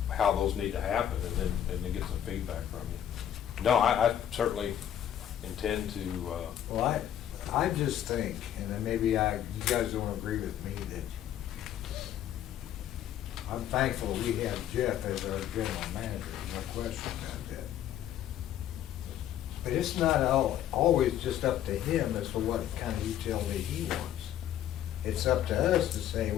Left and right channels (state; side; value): quieter; right; 10.8 dB